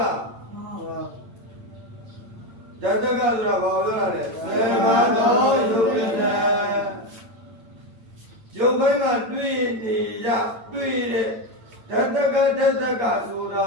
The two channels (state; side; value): late; left; 8.9 ms